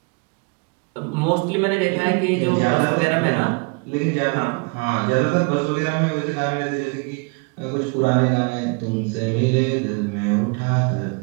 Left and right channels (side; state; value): left; quieter; 31.7 dB